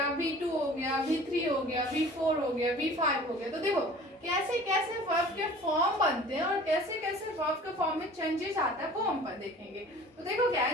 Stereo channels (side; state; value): both; normal; correlation 0.45